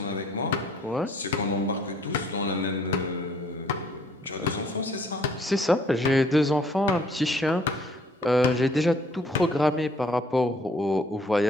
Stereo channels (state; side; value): normal; both; correlation 0.61